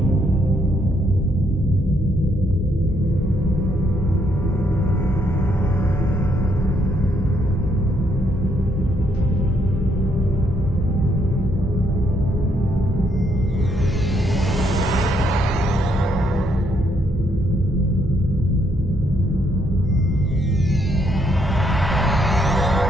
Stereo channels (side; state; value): both; normal; correlation 0.73